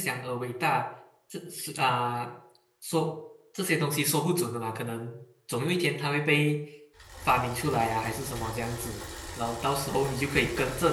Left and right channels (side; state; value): both; identical; correlation 1.00